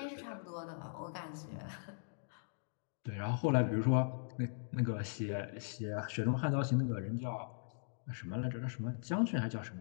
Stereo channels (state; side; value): silent; right; digital silence